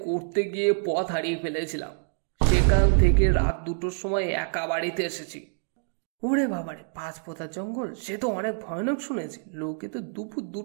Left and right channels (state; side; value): silent; left; digital silence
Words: করতে গিয়ে পথ হারিয়ে ফেলেছিলাম। সেখান থেকে রাত 2টোর সময় একা বাড়িতে এসেছি। ওরে বাবারে, 5 পোতা জঙ্গল, সে তো অনেক ভয়ানক শুনেছি। লোকে তো দুপুর